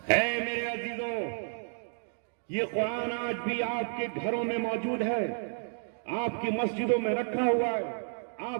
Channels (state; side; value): silent; left; digital silence